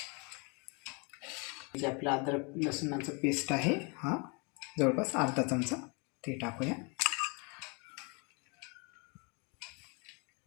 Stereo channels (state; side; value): quieter; right; 32.3 dB